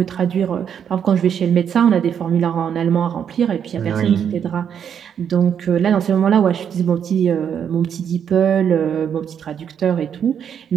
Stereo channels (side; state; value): left; quieter; 8.2 dB